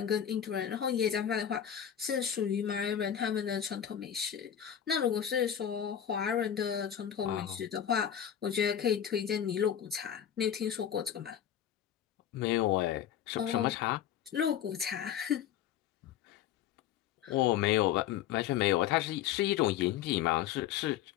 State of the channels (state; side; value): quieter; right; 9.8 dB